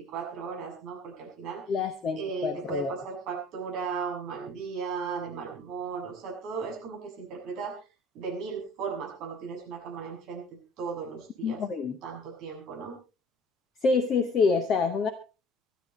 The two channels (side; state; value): both; normal; correlation 0.49